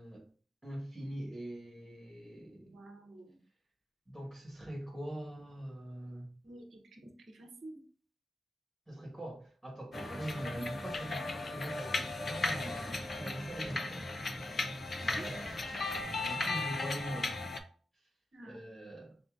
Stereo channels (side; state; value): both; normal; correlation 0.88